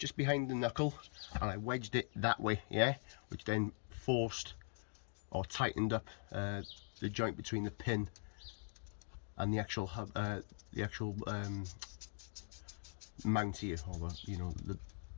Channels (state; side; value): silent; right; digital silence